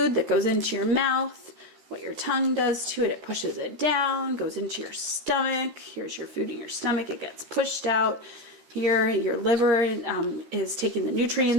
that goes into your mouth, what your tongue does to it, it pushes it down, goes into your stomach. Here's your food in your stomach, it gets pushed out. Here, your liver is taking the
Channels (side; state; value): left; late; 13 ms